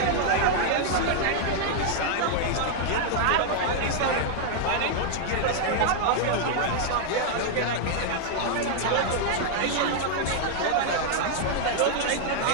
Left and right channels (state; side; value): different; both; correlation 0.00